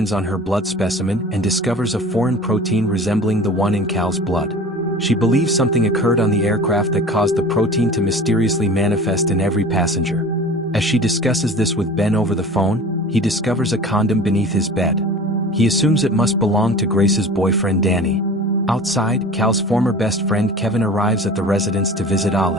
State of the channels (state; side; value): normal; both; correlation 0.40